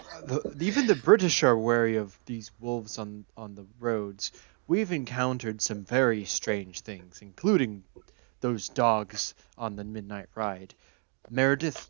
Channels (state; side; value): quieter; left; 39.7 dB